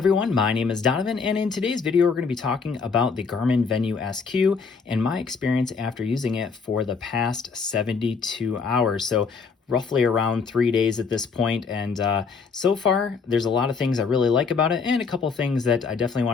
My name is Donovan, and in today's video we're going to be talking about the Garmin Venu Sq and my experience after using it for the past 72 hours. So roughly around 3 days at this point, and so far there's a lot of things I really like about it and a couple things that I definitely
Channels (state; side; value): quieter; right; 5.3 dB